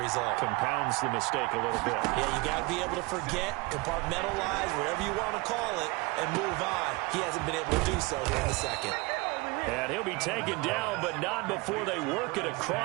Compounds the mistake a little bit. Yeah, you got to be able to forget, compartmentalize, whatever you want to call it, and move on. He hasn't been able to do so here in the second. And he'll be taken down, but not before they work it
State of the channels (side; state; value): left; quieter; 25.0 dB